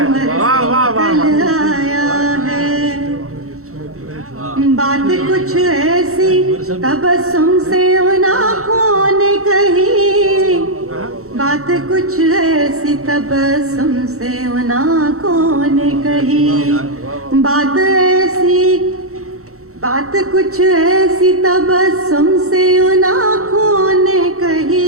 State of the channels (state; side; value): late; left; 0.64 ms